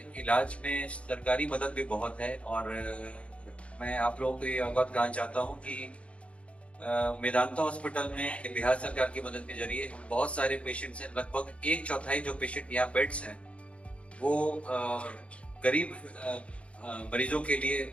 इलाज में सरकारी मदद भी बहुत है और मैं आप लोगों को ये अवगत कराना चाहता हूँ कि मेदांता हॉस्पिटल में बिहार सरकार की मदद के जरिए बहुत सारे पेशेंट्स हैं। लगभग एक चौथाई जो पेशेंट यहाँ बेड्स हैं वो गरीब मरीजों के लिए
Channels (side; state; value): right; late; 0.062 ms